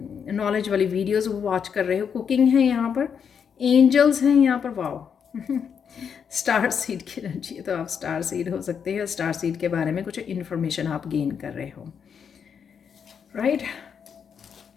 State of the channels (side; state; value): right; quieter; 7.1 dB